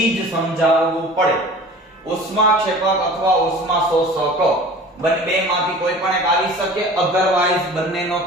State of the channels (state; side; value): normal; both; correlation 0.41